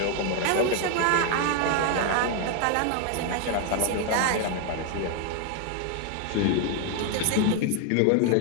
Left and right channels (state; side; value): different; both; correlation 0.01